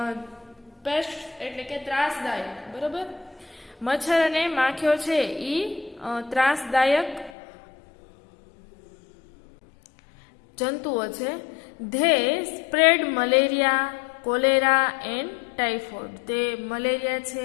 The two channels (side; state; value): right; drops out; at 7.3 s